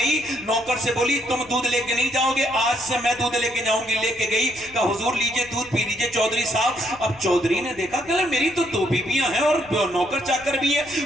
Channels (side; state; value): left; noise; rumble, 24 dB below the sound